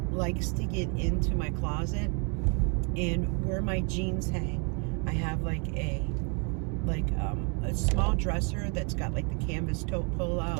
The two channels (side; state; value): left; quieter; 36.4 dB